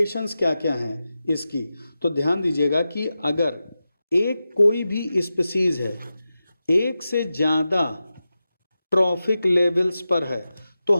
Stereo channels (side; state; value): both; inverted; correlation -0.92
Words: क्या क्या हैं इसकी। तो ध्यान दीजिएगा कि अगर एक कोई भी स्पीसीज है एक से ज्यादा ट्रॉफिक लेवल्स पर है तो